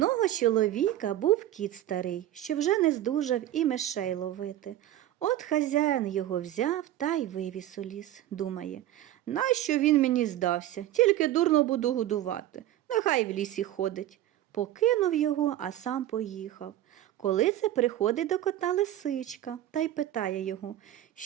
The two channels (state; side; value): quieter; left; 13.2 dB